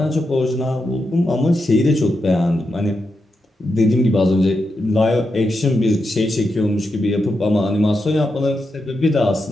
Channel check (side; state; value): both; normal; correlation 0.86